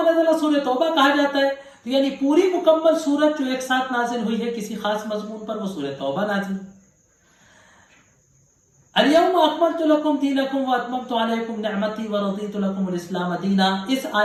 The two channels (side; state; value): both; identical; correlation 1.00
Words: نزل سورہ توبہ کہا جاتا ہے. تو یعنی پوری مکمل سورت جو ایک ساتھ نازل ہوئی ہے کسی خاص مضمون پر، وہ سورہ توبہ نازل. الیوم اکملت لکم دینکم واتممت علیکم نعمتی ورضیت لکم الاسلام دینا. اس